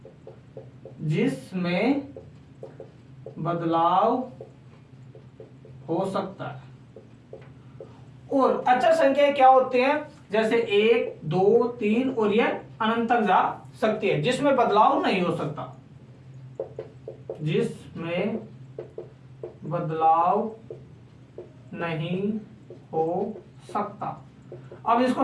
जिसमें बदलाव हो सकता है। और अचर संख्याएं क्या होती हैं? जैसे 1 2 3 और ये अनंत तक जा सकती है, जिसमें बदलाव नहीं हो सकता, जिसमें बदलाव नहीं हो सकता। अब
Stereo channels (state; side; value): identical; both; correlation 1.00